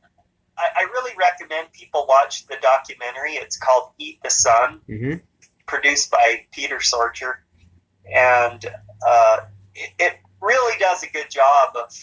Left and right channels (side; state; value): both; identical; correlation 1.00